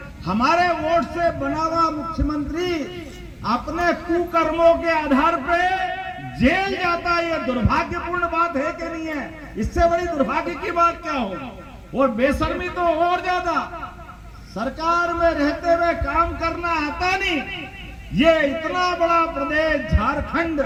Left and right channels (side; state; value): both; identical; correlation 1.00